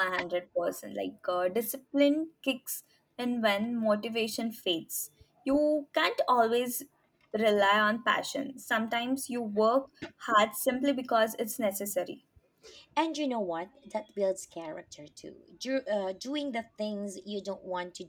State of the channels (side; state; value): both; identical; correlation 1.00